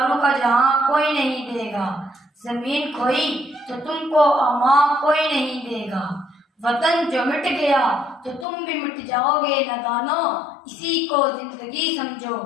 کا جہاں کوئی نہیں دے گا، زمین کھوئی تو تم کو اماں کوئی نہیں دے گا، وطن جو مٹ گیا تو تم بھی مٹ جاؤ گے نادانو، اسی کو زندگی سمجھو،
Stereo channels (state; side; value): drops out; right; at 8.5 s